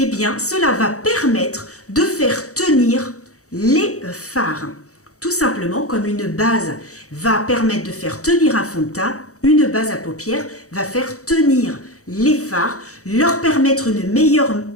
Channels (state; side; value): late; right; 0.65 ms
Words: bien, cela va permettre de faire tenir les fards. Tout simplement, comme une base va permettre de faire tenir un fond de teint, une base à paupières va faire tenir les fards, leur permettre une meilleure